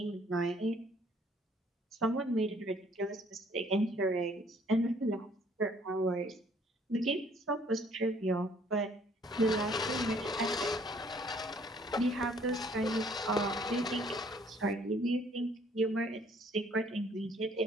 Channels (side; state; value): both; normal; correlation 0.61